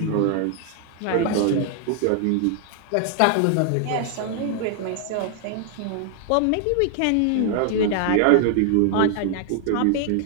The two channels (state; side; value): different; both; correlation 0.00